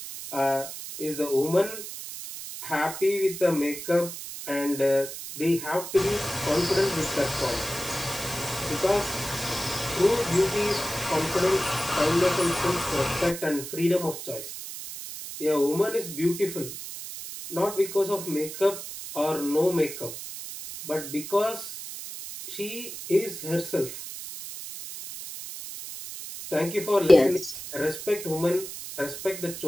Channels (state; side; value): noise; right; hiss, 9 dB below the sound